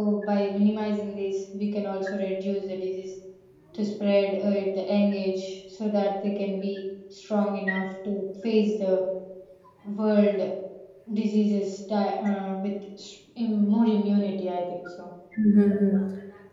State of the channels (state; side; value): identical; both; correlation 1.00